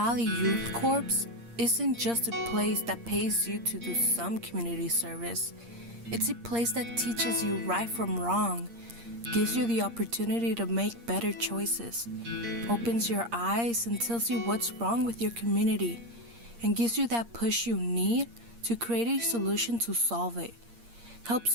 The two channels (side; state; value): left; late; 8.6 ms